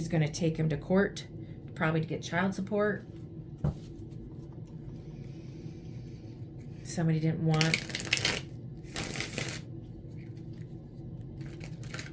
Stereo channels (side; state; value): both; identical; correlation 1.00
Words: going to take him to court, probably to get child support. Somebody didn't want